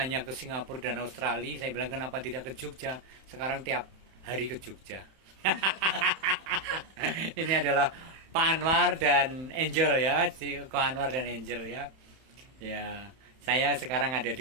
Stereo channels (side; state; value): left; late; 31 ms